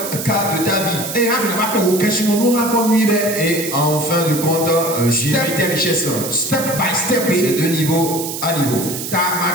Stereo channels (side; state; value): right; noise; hiss, 6 dB below the sound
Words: cas de ta vie. Et en fin de compte, gérer tes richesses. Step by step. C'est de niveau à niveau.